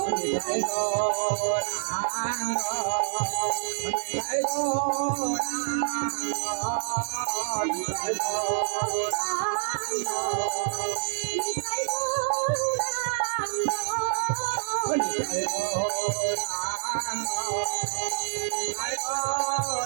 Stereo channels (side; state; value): left; silent; digital silence